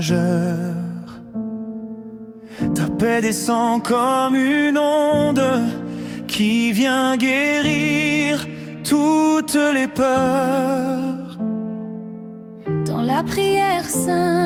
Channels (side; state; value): both; identical; correlation 1.00